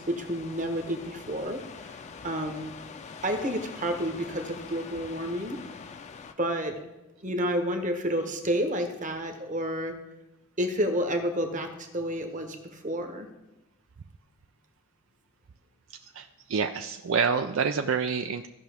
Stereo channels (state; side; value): normal; both; correlation 0.22